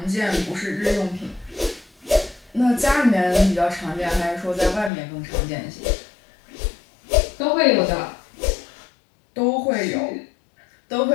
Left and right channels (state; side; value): drops out; right; at 4.9 s